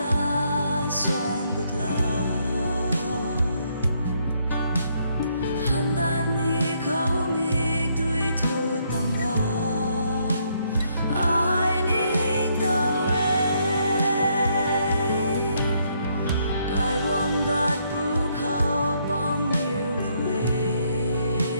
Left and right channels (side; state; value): both; inverted; correlation -0.72